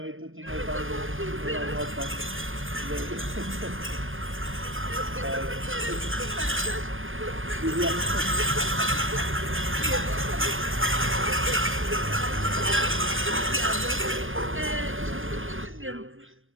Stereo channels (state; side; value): late; left; 0.59 ms